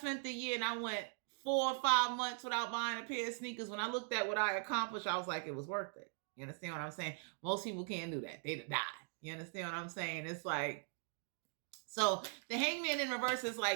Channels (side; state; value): left; silent; 51 dB below the other